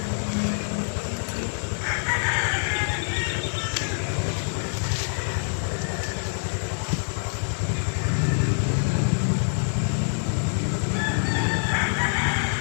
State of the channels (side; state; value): right; silent; digital silence